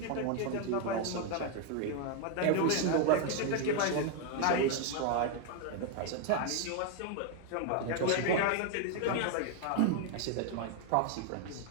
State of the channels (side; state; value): both; different; correlation 0.01